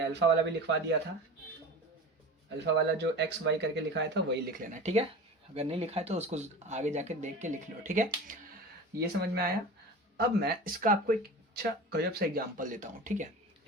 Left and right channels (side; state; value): both; normal; correlation 0.33